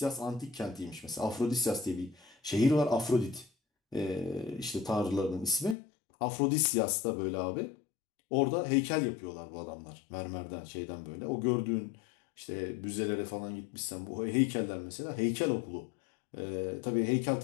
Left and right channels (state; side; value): drops out; right; at 5.8 s